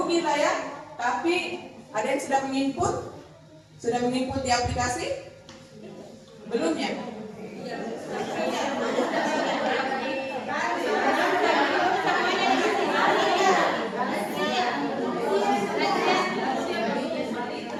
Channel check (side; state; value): both; identical; correlation 1.00